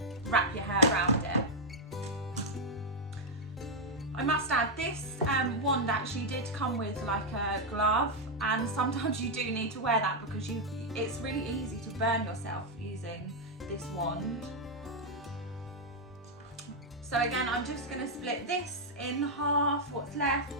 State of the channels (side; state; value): both; normal; correlation -0.01